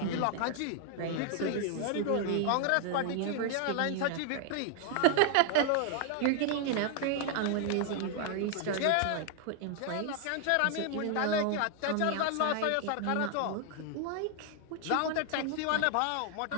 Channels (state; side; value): different; both; correlation 0.00